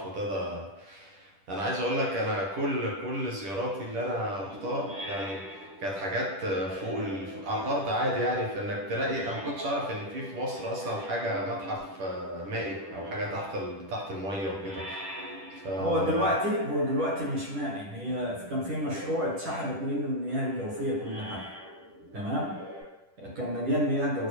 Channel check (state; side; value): late; left; 10 ms